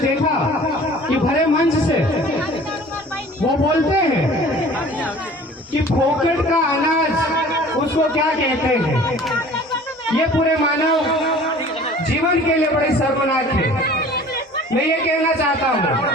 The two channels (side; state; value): both; normal; correlation 0.47